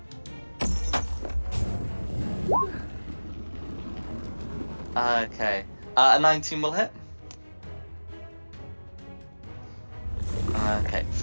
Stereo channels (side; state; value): both; inverted; correlation -1.00